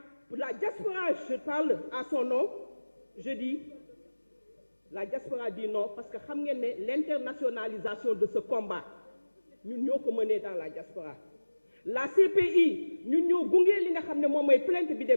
pour la diaspora je parle à son nom je dis la diaspora dit non parce que xam ngeen ne l'internationalisation de ce combat ñun ñoo ko mené dans la diaspora la CPI ñun ñoo gunge li nga xam ne moom mooy plainte bi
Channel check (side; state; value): both; inverted; correlation -1.00